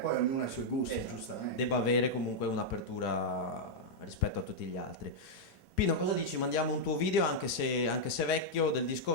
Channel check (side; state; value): both; normal; correlation -0.04